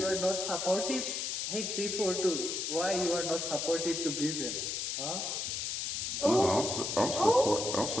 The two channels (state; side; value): noise; left; hiss, 2 dB below the sound